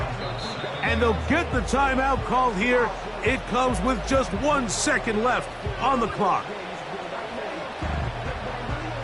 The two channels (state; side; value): identical; both; correlation 1.00